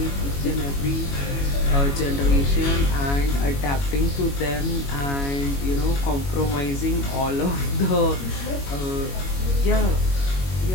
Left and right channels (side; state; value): right; late; 21 ms